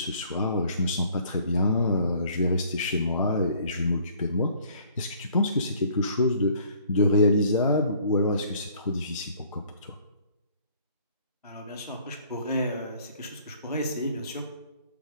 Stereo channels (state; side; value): inverted; both; correlation -0.58